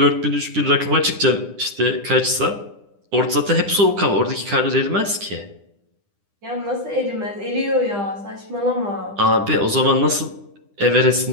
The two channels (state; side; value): late; left; 9.9 ms